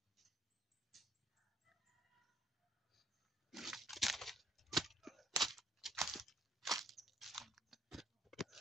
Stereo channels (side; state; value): both; normal; correlation 0.65